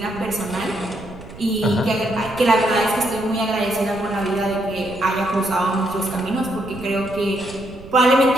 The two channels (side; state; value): right; noise; rumble, 17 dB below the sound